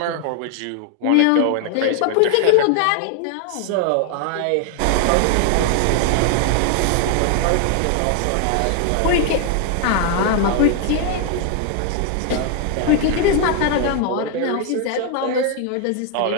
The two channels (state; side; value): different; both; correlation 0.00